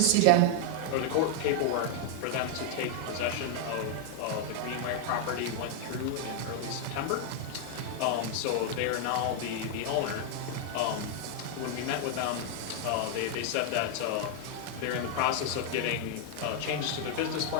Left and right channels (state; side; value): different; both; correlation 0.00